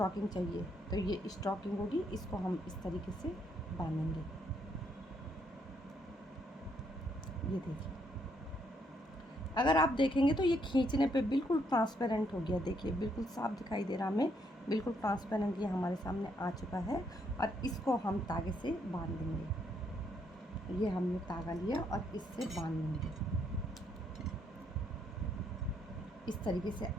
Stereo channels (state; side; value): normal; both; correlation 0.73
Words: चाहिए, तो ये स्टॉकिंग होगी। इसको हम इस तरीके से बांधेंगे। ये देखिए, अगर आप देखेंगे तो ये खींचने पे बिल्कुल ट्रांसपेरेंट हो गया। देखिए, बिल्कुल साफ दिखाई दे रहा हमें, बिल्कुल ट्रांसपेरेंट ये हमारे सामने आ चुका है। और इसको हम तागे से बांध देंगे। ये हमने तागा लिया और इससे बांध देंगे। इस तरीके से